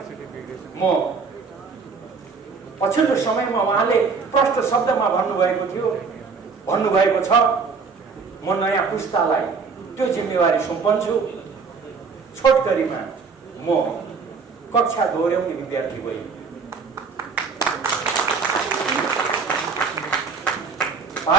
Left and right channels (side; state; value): left; quieter; 5.1 dB